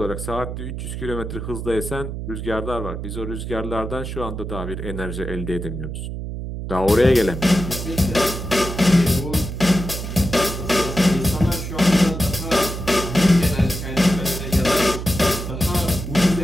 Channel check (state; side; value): noise; right; hum, 6 dB below the sound